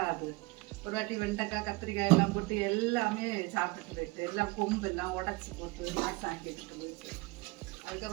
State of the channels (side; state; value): left; quieter; 23.6 dB